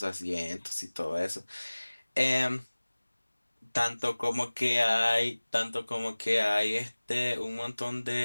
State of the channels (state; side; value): inverted; both; correlation -1.00